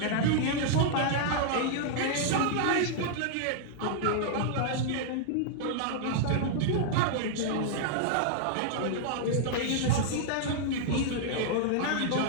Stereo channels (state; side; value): different; both; correlation -0.01